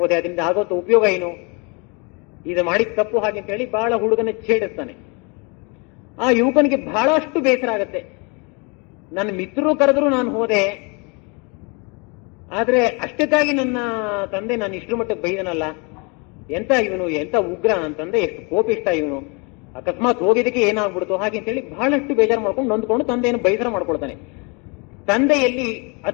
ಹೋದೆ, ಅದರಿಂದ ಆಗೋಂತ ಉಪಯೋಗ ಏನು, ಇದು ಮಾಡಿದ ತಪ್ಪು ಹಾಗೆ ಅಂತ ಹೇಳಿ ಬಹಳ ಹುಡುಗನ ಛೇಡಿಸ್ತಾನೆ. ಆ ಯುವಕನಿಗೆ ಬಹಳಷ್ಟು ಬೇಸರ ಆಗತ್ತೆ. ನನ್ನ ಮಿತ್ರರು ಕರೆದ್ರು ನಾನು ಹೋದೆ, ಆದ್ರೆ ಅಷ್ಟಕ್ಕಾಗಿ ನನ್ನ ತಂದೆ ನಾನು ಇಷ್ಟರ ಮಟ್ಟಕ್ಕೆ ಬೈದನಲ್ಲ, ಎಂತ ಇವನು, ಎಂತ ಉಗ್ರ ಅಂತಂದೆ, ಎಷ್ಟು ಕೋಪಿಷ್ಟ ಇವನು, ಅಕಸ್ಮಾತ್ ಹೋಗಿದ್ದಕ್ಕೆ ಏನಾಗ್ಬಿಡ್ತು ಹಾಗೆ ಅಂತೇಳಿ ಬಹಳಷ್ಟು ಬೇಜಾರು ಮಾಡ್ಕೊಂಡು ನೊಂದ್ಕೊಂಡು ತಂದೆಯನ್ನು ಬೇಸರ ಮಾಡ್ಕೊಳ್ತಾನೆ. ತಂದೆಯಲ್ಲಿ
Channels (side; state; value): right; quieter; 31.3 dB